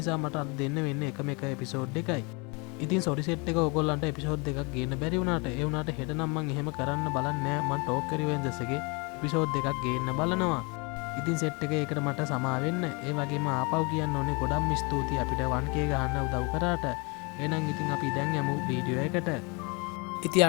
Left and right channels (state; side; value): quieter; right; 30.0 dB